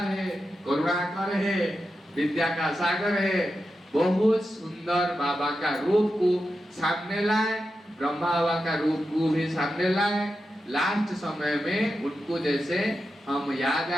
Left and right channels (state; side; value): normal; both; correlation 0.89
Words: है, करुणाकर है, विद्या का सागर है। बहुत सुंदर बाबा का रूप को सामने लाए, ब्रह्मा बाबा का रूप को भी सामने लाए। लास्ट समय में उनको जैसे हम याद